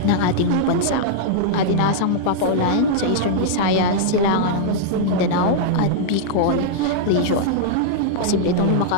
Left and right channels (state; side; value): different; both; correlation -0.02